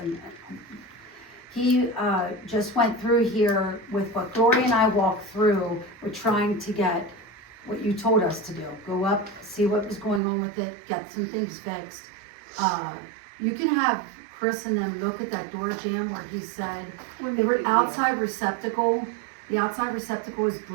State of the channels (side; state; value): left; drops out; at 10.2 s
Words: and he, just went through here with what Gloria and I walked through, we're trying to get what you told us to do, go up, see what was going on with it, get some things fixed. You can have Chris and them look at that door jamb where he said, the outside receptacle, the outside receptacle is